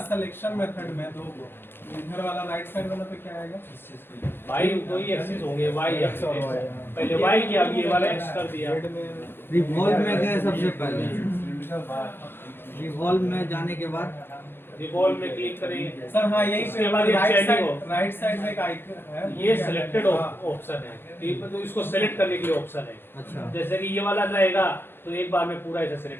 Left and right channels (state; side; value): late; right; 0.10 ms